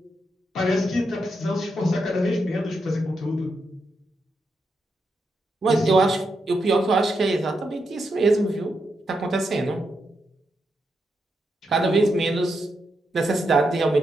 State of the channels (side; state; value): both; normal; correlation 0.83